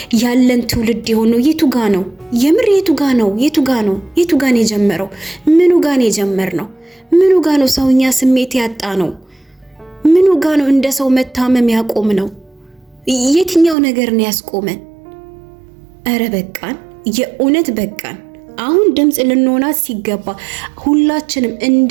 ያለን ትውልድ የሆነው? የቱ ጋ ነው? የምር የቱ ጋ ነው? የቱ ጋ ነው? የቱ ጋ ነው የጀመረው? ምኑ ጋ ነው የጀመርነው? ምኑ ጋ ነው ሰውኛ ስሜት ያጣ ነው? ምኑ ጋ ነው እንደ ሰው መታመም ያቆም ነው? የትኛው ነገር ነው ያስቆመን? አረ በቃን፣ የእውነት በቃን። አሁን ድምጽ ልንሆናት ሲገባ ሁላችንም እንደ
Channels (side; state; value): left; drops out; at 13.8 s